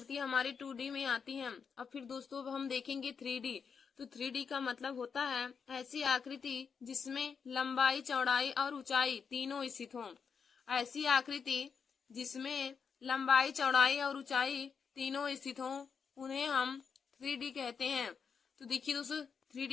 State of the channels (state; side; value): quieter; right; 6.2 dB